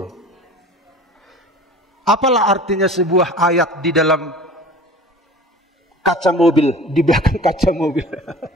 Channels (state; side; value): normal; both; correlation 0.41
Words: Apalah artinya sebuah ayat di dalam kaca mobil, di belakang kaca mobil.